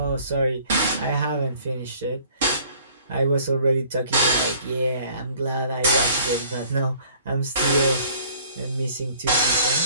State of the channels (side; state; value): both; inverted; correlation -0.55